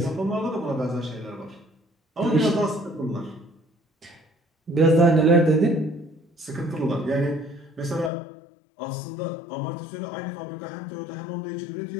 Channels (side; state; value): right; drops out; at 8.1 s